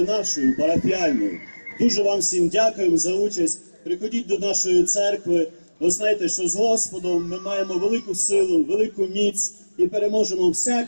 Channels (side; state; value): both; inverted; correlation -1.00